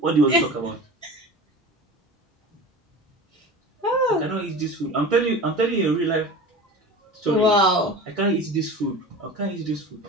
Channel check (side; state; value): both; normal; correlation 0.34